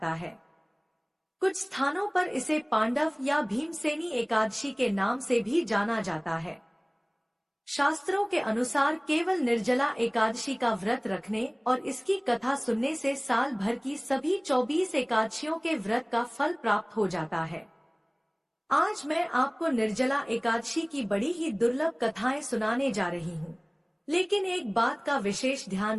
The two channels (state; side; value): identical; both; correlation 1.00